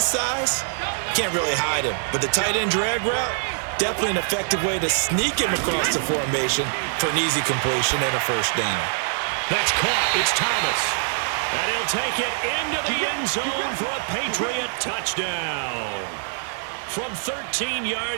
size can't really hide him. But the tight end drag route, definitely an effective way to sneak him across the formation for an easy completion and a first down. That's caught. It's Thomas. And he'll take it into the end zone for a Patriot touchdown. From 13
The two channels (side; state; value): left; silent; digital silence